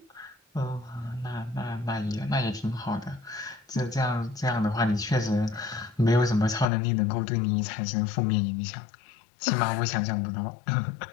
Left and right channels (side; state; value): right; drops out; at 6.7 s